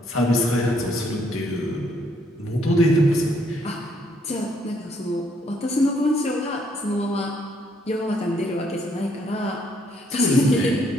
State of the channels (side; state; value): both; normal; correlation 0.69